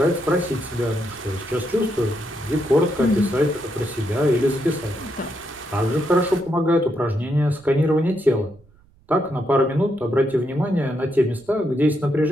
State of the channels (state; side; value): noise; right; rumble, 30 dB below the sound